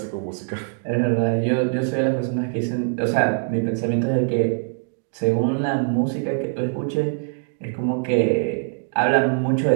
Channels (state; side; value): silent; left; digital silence